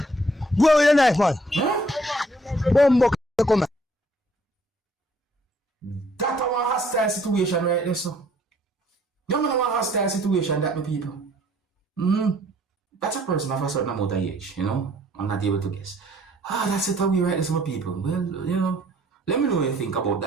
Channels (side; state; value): both; normal; correlation 0.62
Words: with a knife man. Bumbo come. That's a hostile situation right there, so. You know a hostile situation that my people. That's a person of a certain amount of age, you know. I'm not able to guess. That's it away right there, so my people. Well, you know, let me know what you think about